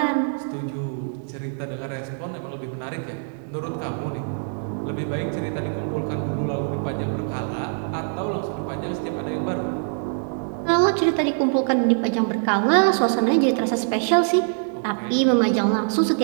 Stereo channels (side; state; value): left; silent; digital silence